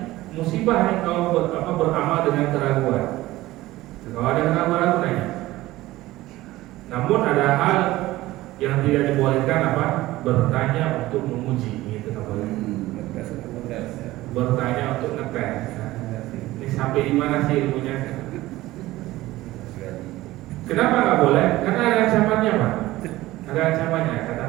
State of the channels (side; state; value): left; quieter; 17.3 dB